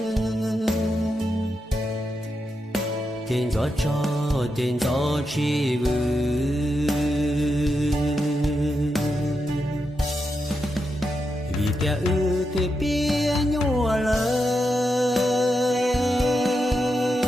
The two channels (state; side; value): normal; both; correlation 0.86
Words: Tiền gió cho tiền gió chi vư, vì tia ư thì bia nhua lời.